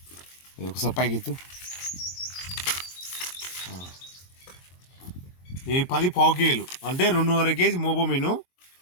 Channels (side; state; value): right; late; 22 ms